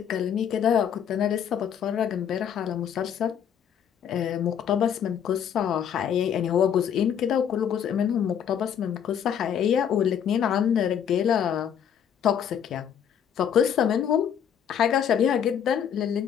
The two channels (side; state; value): right; quieter; 8.6 dB